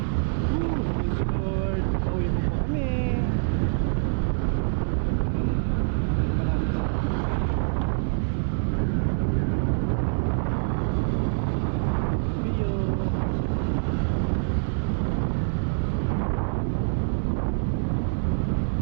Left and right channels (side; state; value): left; silent; digital silence